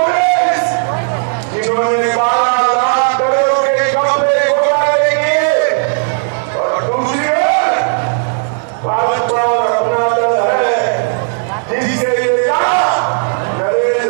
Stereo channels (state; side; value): silent; left; digital silence